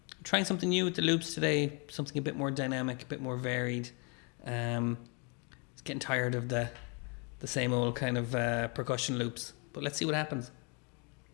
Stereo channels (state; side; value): quieter; right; 34.8 dB